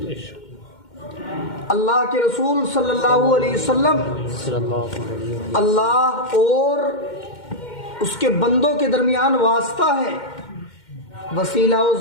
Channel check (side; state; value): right; late; 2.1 ms